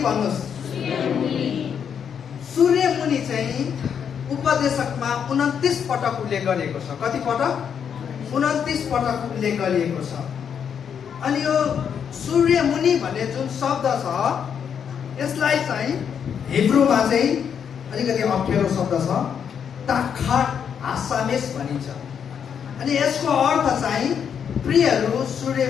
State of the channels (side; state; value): right; quieter; 7.7 dB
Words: भन्नुहोस्। सूर्यमुनि चाहिँ उपदेशकमा 29 पटक उल्लेख गरिएको छ। कति पटक? 29 पटक उल्लेख गरिएको छ। अनि यो सूर्यमुनि भन्ने जुन शब्द छ, यसलाई चाहिँ हिब्रूमा चाहिँ अलिकति अप्ठ्यारो शब्द छ, ताखाट आसामेस भनिन्छ। अनि यसको अर्थ चाहिँ प्रियहरू,